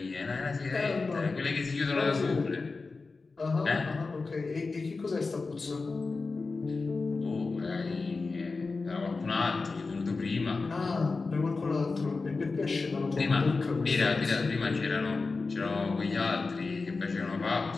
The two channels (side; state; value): right; quieter; 4.0 dB